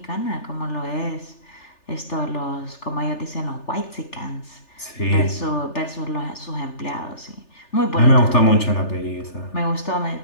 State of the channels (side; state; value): right; late; 3.4 ms